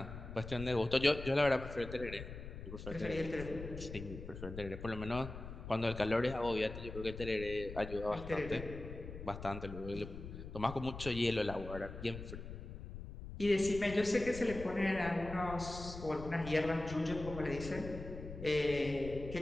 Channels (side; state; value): left; noise; rumble, 10 dB below the sound